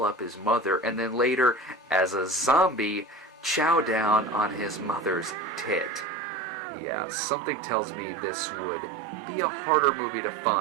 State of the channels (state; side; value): drops out; left; at 6.1 s